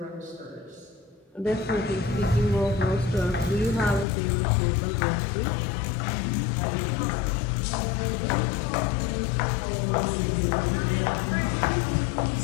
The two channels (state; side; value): drops out; right; at 4.0 s